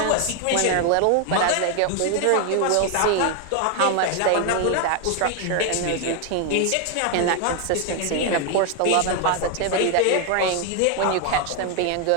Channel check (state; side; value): different; both; correlation 0.01